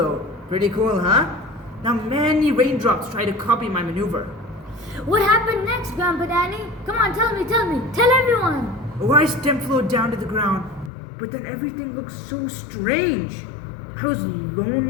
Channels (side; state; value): right; drops out; at 10.9 s